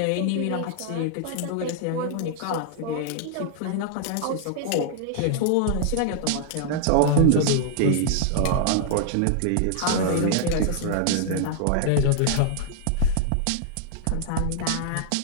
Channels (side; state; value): both; different; correlation -0.01